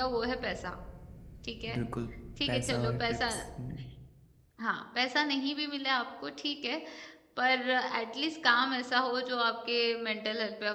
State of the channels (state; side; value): identical; both; correlation 1.00